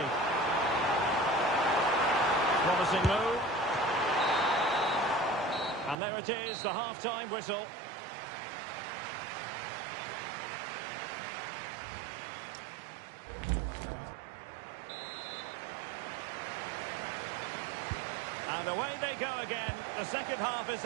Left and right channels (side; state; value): left; drops out; at 6.0 s